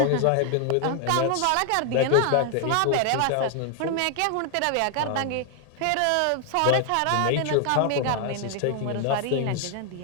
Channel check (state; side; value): different; both; correlation 0.00